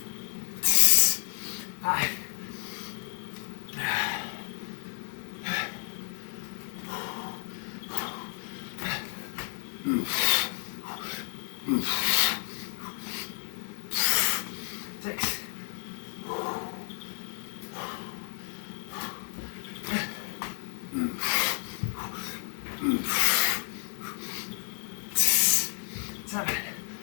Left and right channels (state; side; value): silent; right; 57 dB below the other